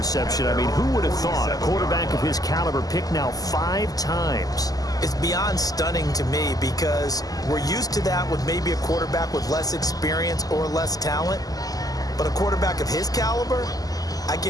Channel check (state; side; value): late; right; 0.17 ms